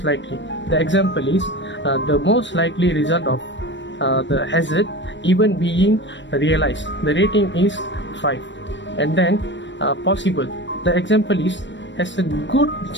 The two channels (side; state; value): right; late; 0.53 ms